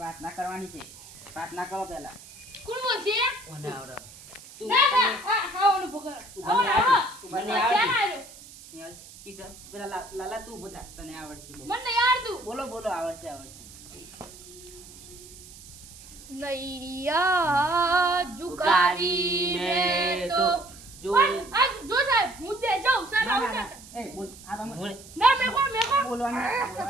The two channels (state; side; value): noise; right; hiss, 18 dB below the sound